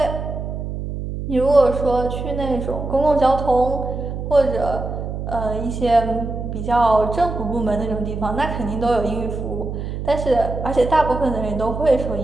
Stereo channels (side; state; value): right; noise; hum, 6 dB below the sound